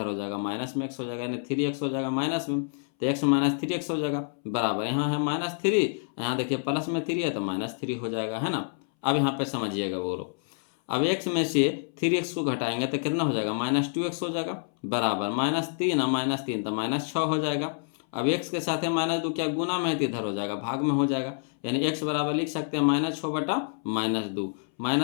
हो जाएगा माइनस में x हो जाएगा, यानी 3x हो जाएगा माइनस में, तो x - 3x हो जाएगा बराबर। यहाँ है -3, यहाँ देखिए प्लस में 3 है तो -3 हो जाएगा है ना। अब यहाँ पे समझिएगा बोलो, अब x में से 3x को घटाएंगे तो कितना हो जाएगा -2x हो जाएगा बराबर, -3 और -3 तो -6 हो जाएगा। अब x के साथ है -2 क्या गुना में है तो इधर हो जाएगा भाग में हो जाएगा, यानी x बराबर लिख सकते हैं -6 बटा -2,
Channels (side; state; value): right; silent; 60 dB below the other